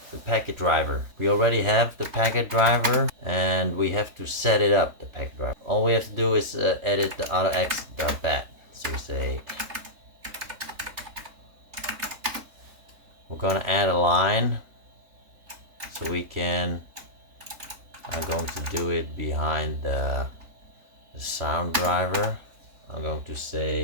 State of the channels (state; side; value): late; left; 3.1 ms